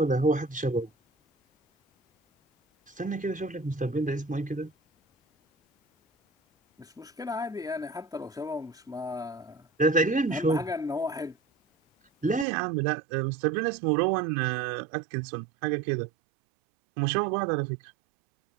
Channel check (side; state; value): left; drops out; at 12.5 s